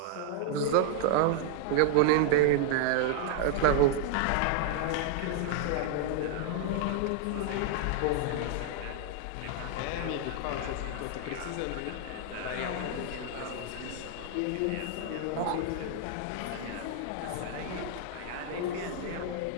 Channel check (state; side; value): different; both; correlation -0.01